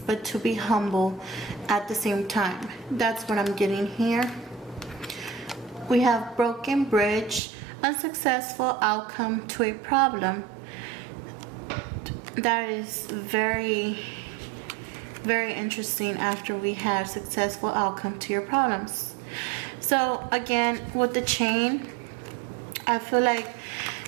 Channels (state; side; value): drops out; left; at 7.4 s